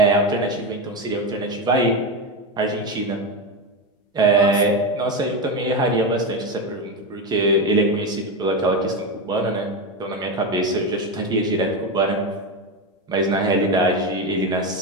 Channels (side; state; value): both; normal; correlation 0.15